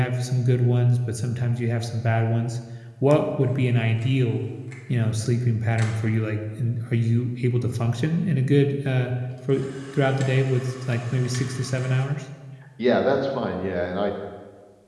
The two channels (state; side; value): identical; both; correlation 1.00